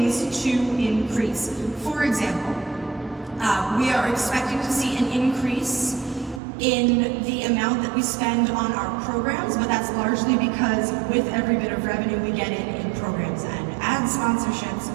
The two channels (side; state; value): left; drops out; at 6.4 s